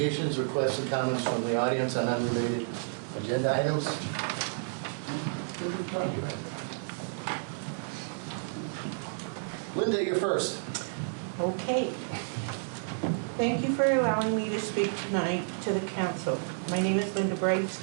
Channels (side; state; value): left; silent; digital silence